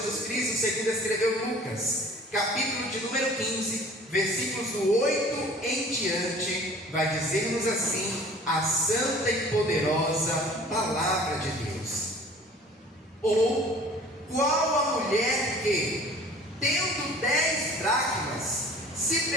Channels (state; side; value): normal; both; correlation 0.48